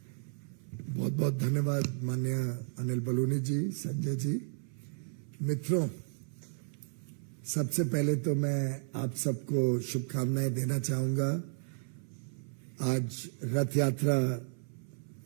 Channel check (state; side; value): silent; left; 56 dB below the other